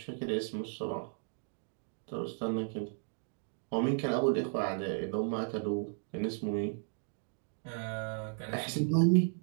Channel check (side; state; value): left; silent; 54 dB below the other